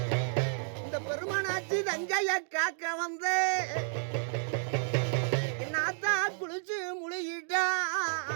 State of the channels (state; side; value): silent; left; 57 dB below the other